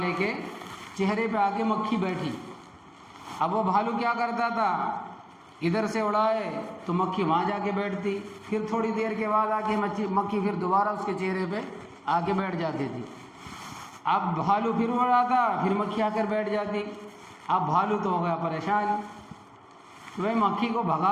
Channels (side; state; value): both; identical; correlation 1.00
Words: کے چہرے پہ آ کے مکھی بیٹھی۔ اب وہ بھالو کیا کرتا تھا، ادھر سے اڑائے تو مکھی وہاں جا کے بیٹھتی، پھر تھوڑی دیر کے بعد آ کے مکھی پھر دوبارہ اس کے چہرے پہ آ کے بیٹھ جاتی تھی۔ اب بھالو پھر اڑاتا، پھر مکھی آ کر بیٹھ جاتی۔ اب بھالو تو ہو گیا پریشان، میں مکھی کو